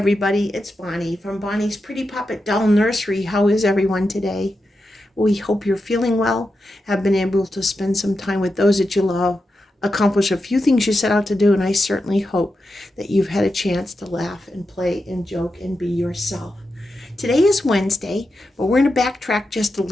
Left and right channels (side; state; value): both; normal; correlation 0.88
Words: it's Bonnie from Bonnie's Pretty Poppet Doll Nursery. How is everyone today? We hope you're feeling well, have been able to spend some time with those that you love, accomplish a few things you set out to do, and I certainly hope that you've had a chance to laugh and play and joke and be yourself. Today is Wednesday, but we're going to backtrack just a